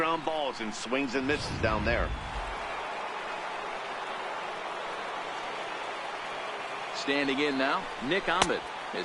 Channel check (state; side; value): identical; both; correlation 1.00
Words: balls and swings and misses down there. Standing in now, Nick Ahmed,